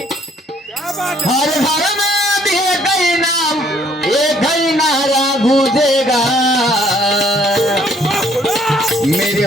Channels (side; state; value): both; normal; correlation 0.63